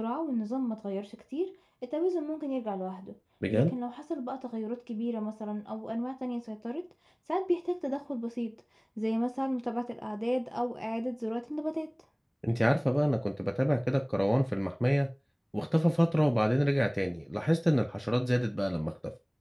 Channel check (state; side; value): identical; both; correlation 1.00